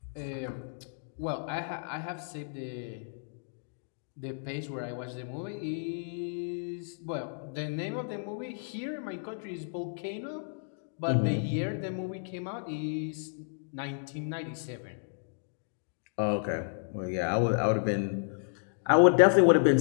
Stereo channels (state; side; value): silent; right; digital silence